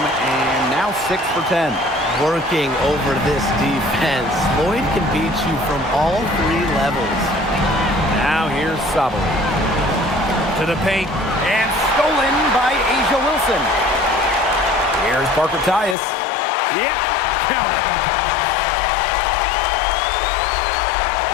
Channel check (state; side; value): drops out; right; at 16.0 s